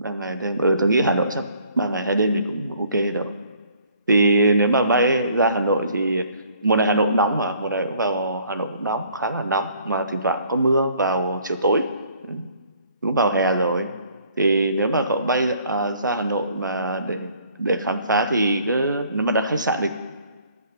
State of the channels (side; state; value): both; inverted; correlation -0.60